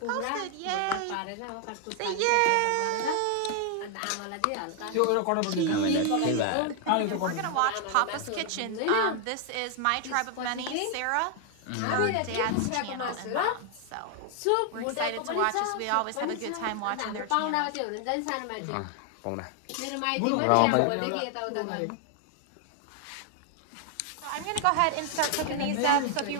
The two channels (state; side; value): different; both; correlation 0.00